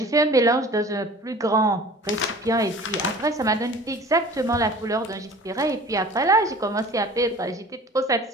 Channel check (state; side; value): normal; both; correlation 0.44